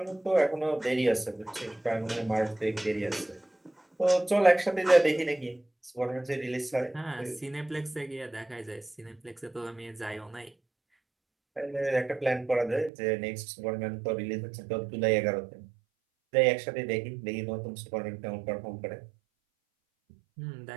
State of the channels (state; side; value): drops out; left; at 12.9 s